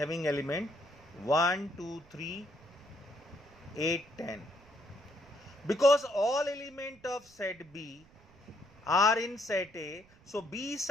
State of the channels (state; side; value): noise; right; rumble, 26 dB below the sound